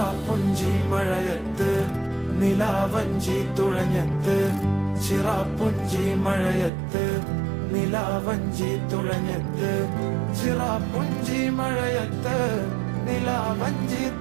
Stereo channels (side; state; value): left; drops out; at 6.7 s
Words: മഴയത്ത് നിലാവഞ്ചി തുഴഞ്ഞത്ത്, ചിറാപ്പുഞ്ചി മഴയത്ത് നിലാവഞ്ചി തുഴഞ്ഞത്ത്, ചിറാപ്പുഞ്ചി മഴയത്ത് നിലാവഞ്ചി